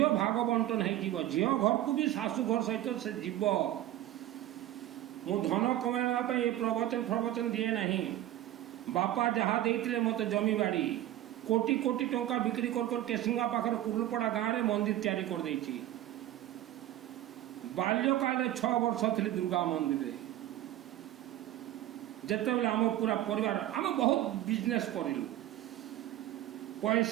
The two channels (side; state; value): left; quieter; 13.7 dB